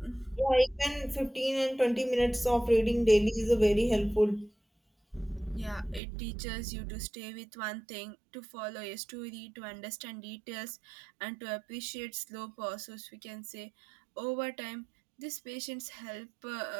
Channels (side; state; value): left; drops out; at 6.0 s